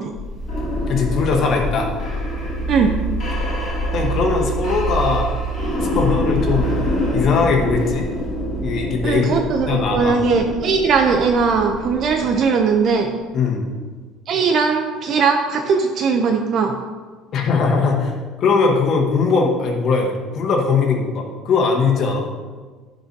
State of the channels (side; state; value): both; normal; correlation 0.55